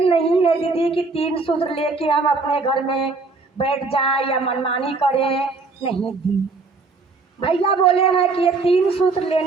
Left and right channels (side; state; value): left; quieter; 4.0 dB